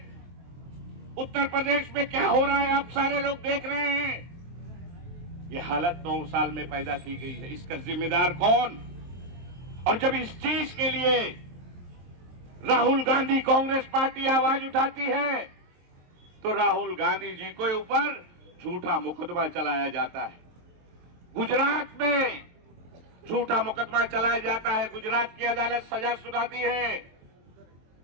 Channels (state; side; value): late; left; 23 ms